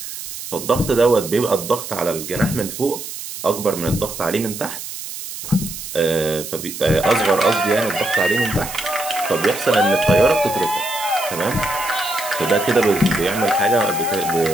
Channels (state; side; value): noise; right; hiss, 9 dB below the sound